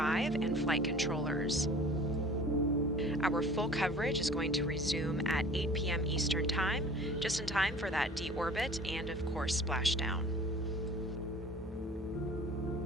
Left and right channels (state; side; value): normal; both; correlation 0.46